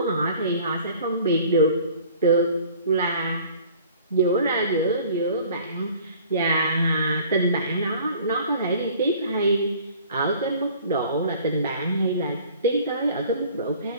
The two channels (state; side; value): inverted; both; correlation -0.51